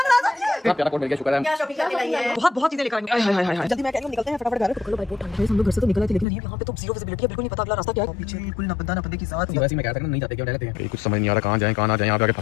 कोड मिल गया, शुक्र है। क्या शॉपिंग करके लाई है? बहुत चीजें लेकर आएंगे। हाय हाय हाय जल्दी मैं कह रही हूं निकलते हैं फटाफट घर। चलो भाई बहुत ठंड है, हम लोग घर से तो निकल आए थे लेकिन यहाँ पे तो जीरो विजिबिलिटी है, बिल्कुल नहीं पता अगला रास्ता क्या है। पीछे बिल्कुल ना बंदा ना बंदे की साथ वैसे मैं कहता हूं नहीं जाते क्यों रहते हैं, कुछ समझ नहीं आ रहा कहां जाएं कहां ना जाएं, यहाँ पे आके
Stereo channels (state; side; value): drops out; right; at 6.2 s